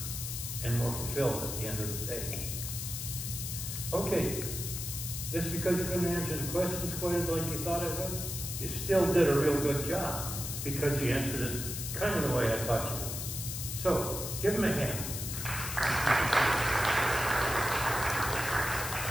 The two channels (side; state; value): left; noise; hiss, 5 dB below the sound